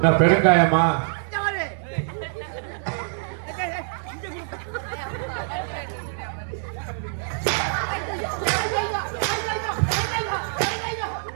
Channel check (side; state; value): left; silent; 62 dB below the other